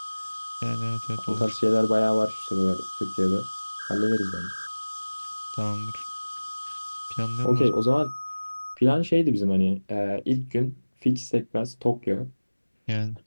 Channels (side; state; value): both; inverted; correlation -1.00